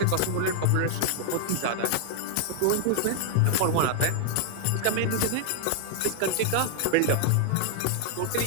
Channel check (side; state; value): both; different; correlation 0.00